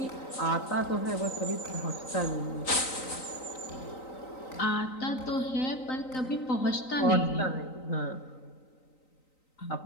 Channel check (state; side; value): late; right; 3.9 ms